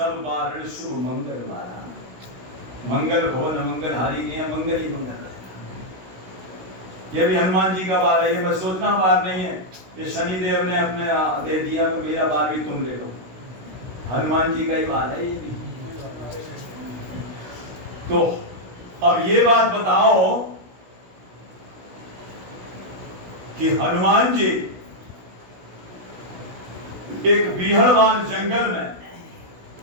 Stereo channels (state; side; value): late; left; 16 ms